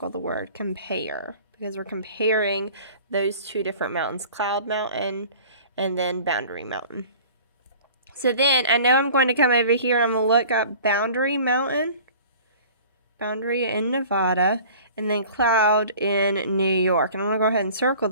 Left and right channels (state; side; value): inverted; both; correlation -0.45